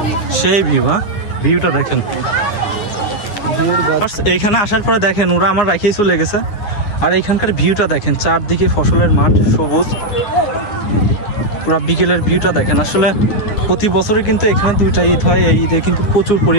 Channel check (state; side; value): late; right; 9.3 ms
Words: সেই ভিউ। হ্যাঁ, ভিউটা দেখেন। এইখানে আসার পরে দেখেন ওরা আমার রাখিয়ে চলে গেছে। আর এইখানকার ভিউটা দেখেন, চারদিকে ফসলের মাঠ, সবুজ, পুরা বিকেলের ভিউটা দেখেন। আসলে প্রতি বছরে কিন্তু এখানে 2টা ঈদ হয়, এই ঈদে কিন্তু প্রচুর